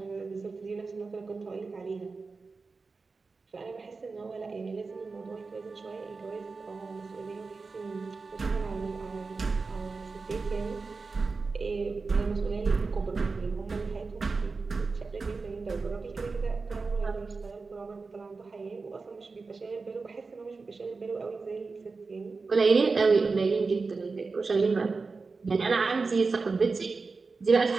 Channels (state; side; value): quieter; left; 4.2 dB